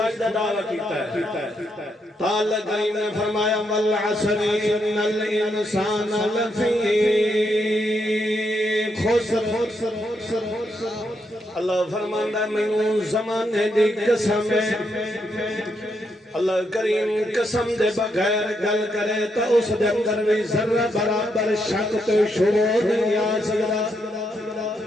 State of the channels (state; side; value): normal; both; correlation 0.79